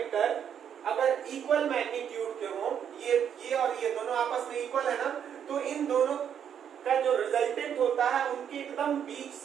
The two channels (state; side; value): quieter; left; 8.6 dB